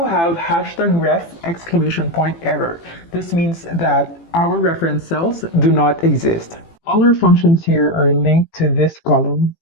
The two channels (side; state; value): right; late; 18 ms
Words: have hashtag ref exclamation point error. This means that our reference cells do not exist. All our functions here are linked to this column.